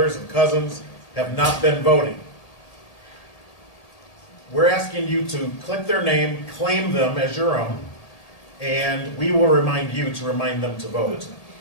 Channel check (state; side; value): late; right; 1.8 ms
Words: and cousins have not been voting. We're asking you to click their name, claim them as your own, and we will remind you to remind them to vote.